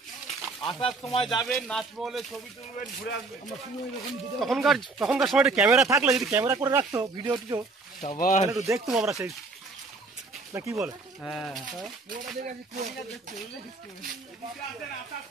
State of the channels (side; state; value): left; quieter; 3.6 dB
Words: আসার সময় যাবেন, নাচমহলে ছবি তুলবেন, ঘুরে আসবেন। তখনকার সময় ক্যামেরা থাকলে, যদি ক্যামেরা করে রাখতো ভিডিও টিডিও, তাহলে একটু দেখতাম আমরা সেই, না কি বলে? হ্যাঁ, আসার